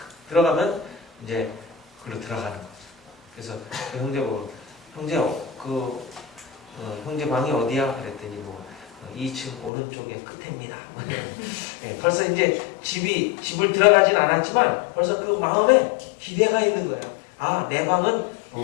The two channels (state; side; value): drops out; right; at 9.7 s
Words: 들어가면 이제 그로 들어가는 거죠. 그래서 그 형제 보고 형제 형제 방이 어디야? 그랬더니 뭐 2층 오른쪽에 끝입니다. 네, 벌써 이제 집을 들어가진 않았지만 벌써 그 마음에 기대가 있는 거예요. 아, 내 방은